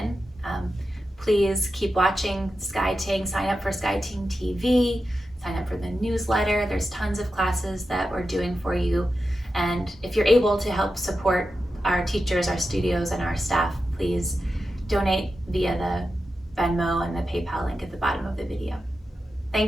Please keep watching Sky Ting. Sign up for Sky Ting TV. Sign up for the newsletter. There's tons of classes that we're doing for you. And if you're able to help support our teachers, our studios, and our staff, please donate via the Venmo and the PayPal link at the bottom of the video.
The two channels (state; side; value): normal; both; correlation 0.91